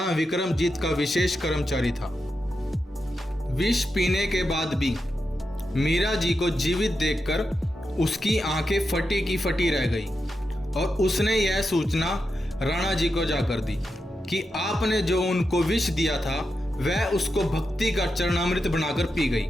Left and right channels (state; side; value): normal; both; correlation 0.88